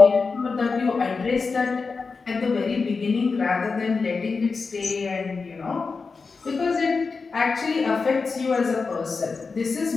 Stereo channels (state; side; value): quieter; right; 4.6 dB